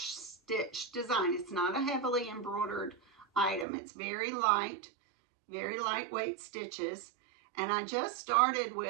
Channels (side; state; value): left; drops out; at 3.7 s